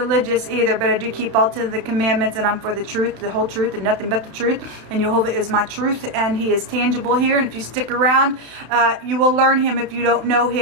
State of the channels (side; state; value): left; late; 32 ms